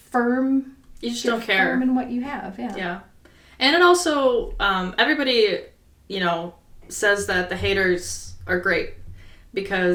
firm... You just don't care. Firm in what you have, Yeah. And it also, everybody, you know, says that the haters are great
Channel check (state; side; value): identical; both; correlation 1.00